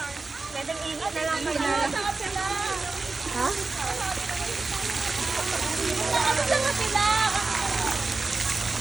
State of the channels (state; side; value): quieter; left; 3.8 dB